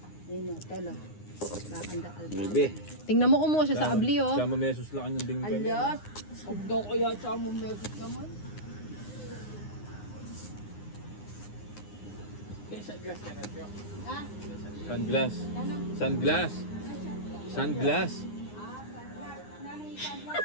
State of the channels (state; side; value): late; right; 9.7 ms